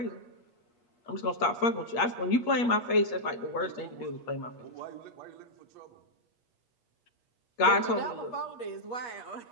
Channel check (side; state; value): right; late; 8.5 ms